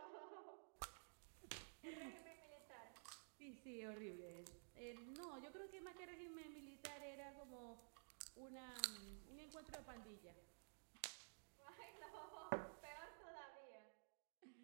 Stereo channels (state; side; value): silent; left; digital silence